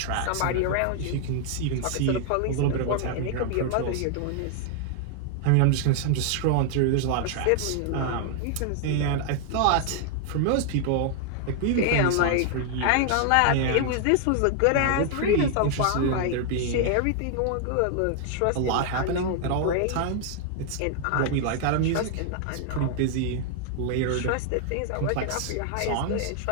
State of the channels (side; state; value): both; different; correlation 0.00